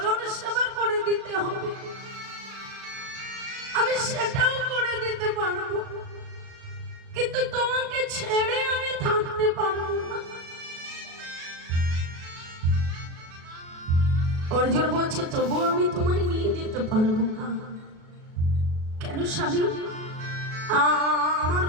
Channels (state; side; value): late; left; 37 ms